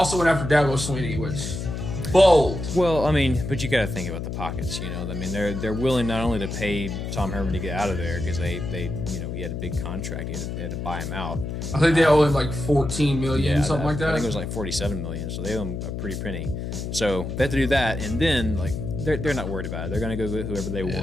Swinney, which bold. Well, I mean, but you got to think about the pockets. I mean, they're willing not only to pay Tom Herman to get out of there because they he had a big contract. They had to buy him out. I think they owe him like $14 million, something like that. I think it was like $47 million. So they owe him a pretty penny. So they have to do that, and then like. They're not worried about it. They're going to go get whoever they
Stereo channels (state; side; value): noise; left; hum, 5 dB below the sound